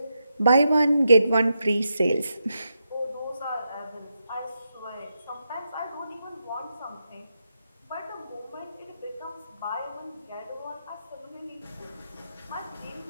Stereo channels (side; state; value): both; inverted; correlation -0.85